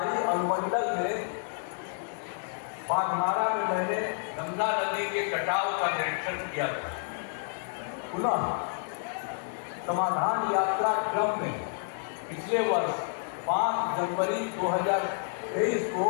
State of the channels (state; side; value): silent; right; digital silence